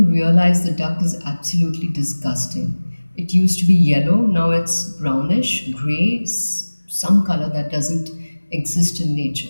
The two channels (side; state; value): both; inverted; correlation -1.00